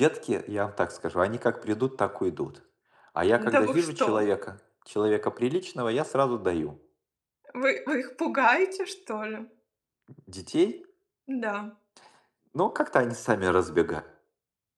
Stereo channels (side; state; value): both; identical; correlation 1.00